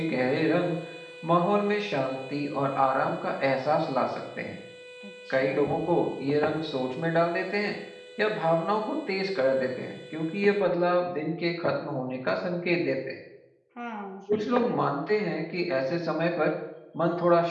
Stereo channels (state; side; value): identical; both; correlation 1.00